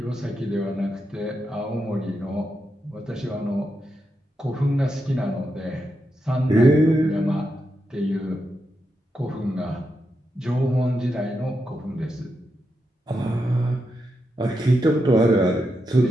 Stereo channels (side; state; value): both; normal; correlation 0.85